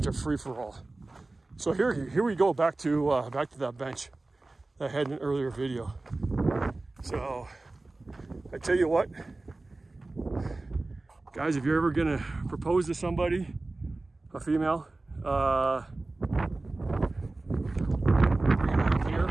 a free-for-all. So here we go back to that bench that I had in an earlier video. So I tell you what, guys, if you're ever gonna propose to somebody, a female, here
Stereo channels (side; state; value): left; quieter; 3.1 dB